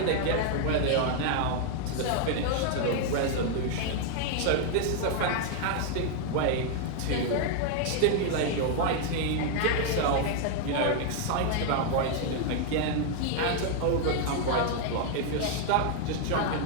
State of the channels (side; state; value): both; different; correlation 0.00